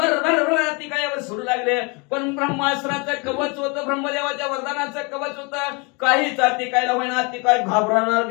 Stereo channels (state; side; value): quieter; right; 30.4 dB